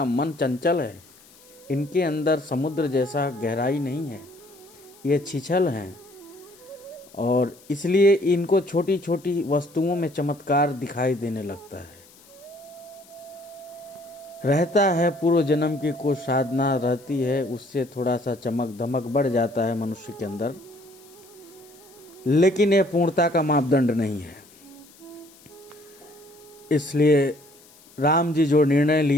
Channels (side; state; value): left; noise; hiss, 26 dB below the sound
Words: मन चंचल है, इनके अंदर समुद्र जैसा गहराई नहीं है, ये छिछल हैं और इसलिए इनको छोटी छोटी वस्तुओं में चमत्कार दिखाई देने लगता है। रहता है पूर्व जन्म की कुछ साधना रहती है, उससे थोड़ा सा चमक धमक बढ़ जाता है मनुष्य के अंदर, लेकिन यह पूर्णता का मापदंड नहीं है। इसलिए राम जी जो निर्णय